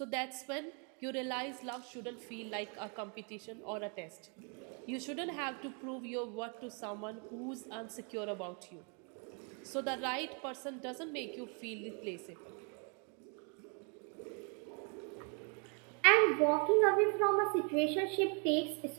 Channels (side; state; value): left; quieter; 38.2 dB